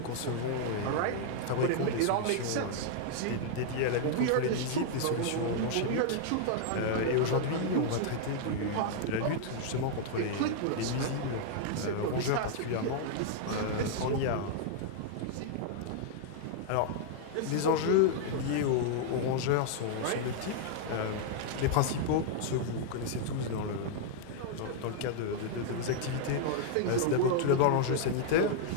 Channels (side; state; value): both; different; correlation -0.01